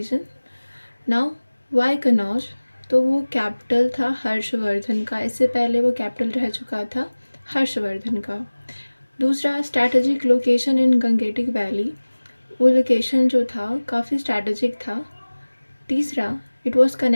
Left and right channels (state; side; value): inverted; both; correlation -1.00